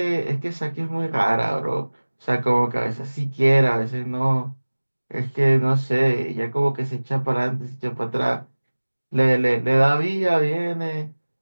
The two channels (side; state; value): both; inverted; correlation -1.00